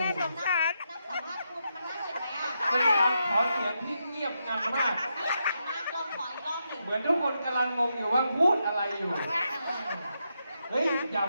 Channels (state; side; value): inverted; both; correlation -0.83